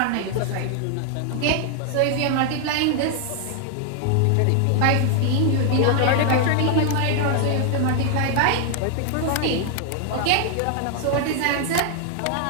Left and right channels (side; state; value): both; different; correlation 0.00